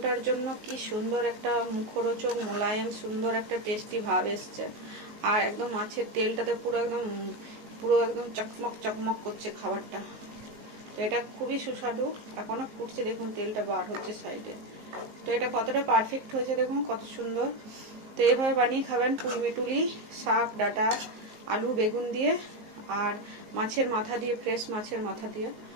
জন্য কি সুন্দর একটা মুখরোচক মোলায়েম সুন্দর একটা টেস্টি ভাব এসছে। আর একদম মাছের তেলটাতে পুরো একদম চকমক চকমক করছে খাবারটা। তো এটা খুবই সুস্বাদু, এখনো ফুটছে, দেখুন তেলটা বার হচ্ছে সাইডে। তো এটা কতটা পারফেক্ট হয়েছে দেখুন, কত সুন্দর। তো এইভাবে বানিয়ে খাবেন পুঁই মিটুলি শাক, ডাঁটা, আলু বেগুন দিয়ে আর মাছের মাথা দিয়ে, ফ্রেশ মাছের মাথা দিয়ে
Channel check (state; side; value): late; left; 19 ms